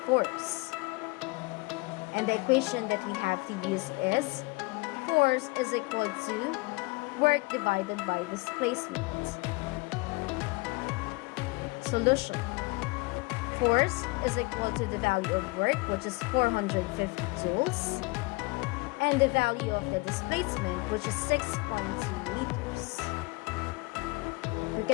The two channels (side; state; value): right; quieter; 26.6 dB